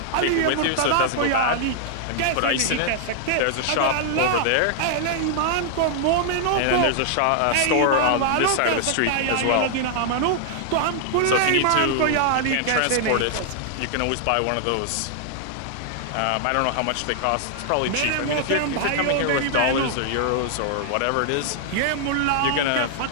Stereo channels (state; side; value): different; both; correlation -0.01